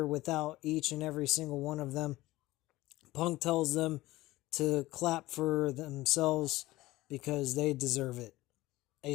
without each and every single one of them. Punk tells them to clap for themselves because they deserve it. A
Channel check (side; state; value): right; quieter; 18.2 dB